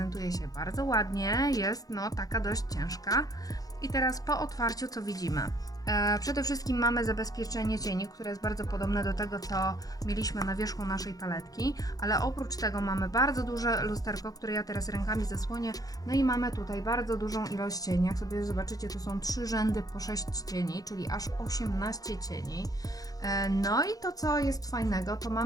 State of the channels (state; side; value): late; right; 0.18 ms